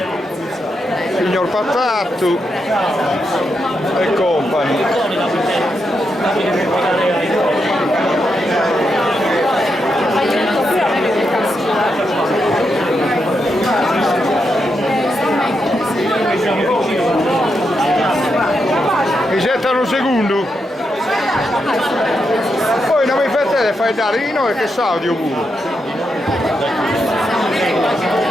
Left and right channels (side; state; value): both; normal; correlation 0.83